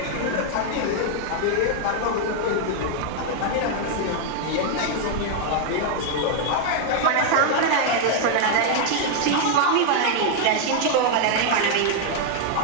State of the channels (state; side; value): different; both; correlation 0.00